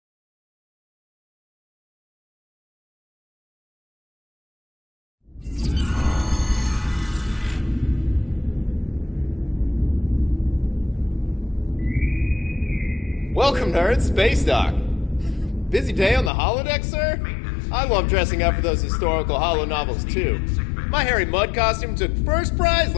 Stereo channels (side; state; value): right; drops out; at 16.3 s